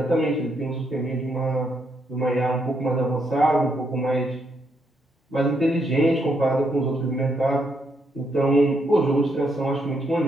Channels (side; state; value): both; normal; correlation 0.76